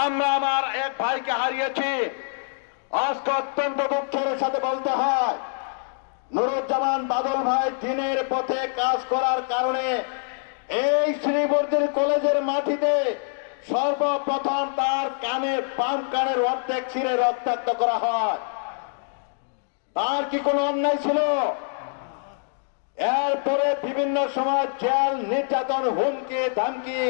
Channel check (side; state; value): right; silent; 62 dB below the other